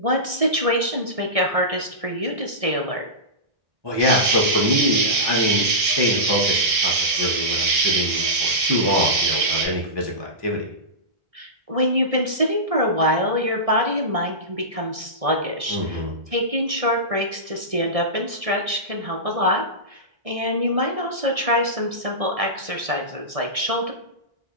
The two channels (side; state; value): left; late; 1.6 ms